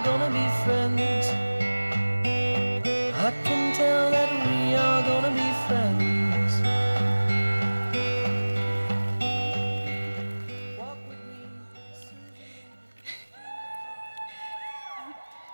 gonna be friends. I can tell that we are gonna be friends. Walk with me.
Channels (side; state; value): both; inverted; correlation -1.00